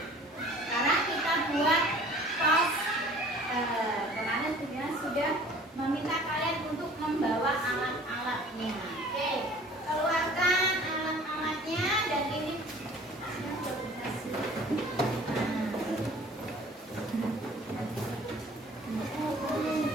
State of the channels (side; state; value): both; normal; correlation 0.49